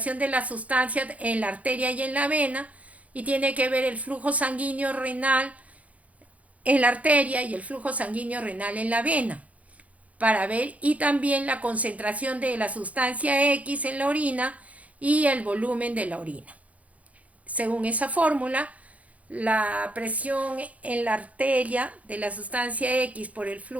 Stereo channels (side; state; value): left; late; 0.068 ms